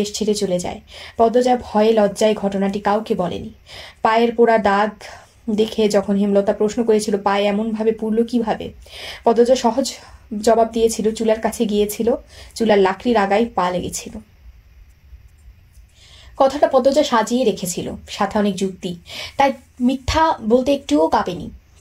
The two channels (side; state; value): both; identical; correlation 1.00